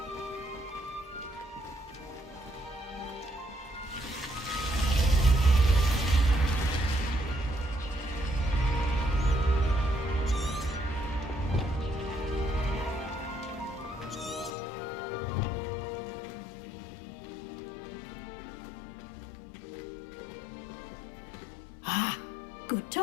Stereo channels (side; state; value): right; drops out; at 14.5 s